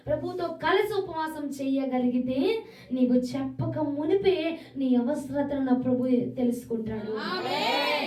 ప్రభుతో కలిసి ఉపవాసం చేయగలిగితే నీవు చెప్పక మునిపే నీ అవసరతను నా ప్రభు తెలుసుకుంటాడు.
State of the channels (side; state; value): both; identical; correlation 1.00